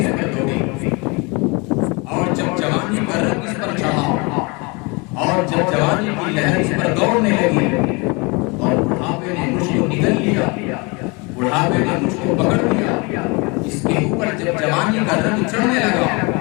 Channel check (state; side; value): quieter; right; 28.5 dB